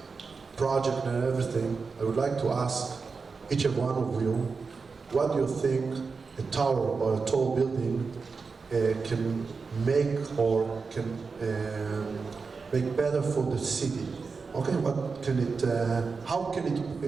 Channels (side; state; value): left; quieter; 4.8 dB